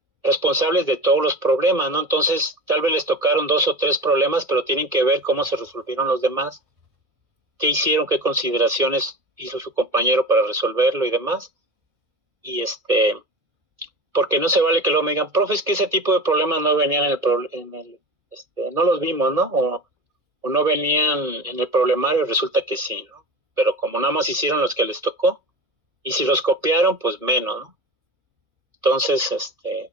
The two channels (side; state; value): left; late; 1.8 ms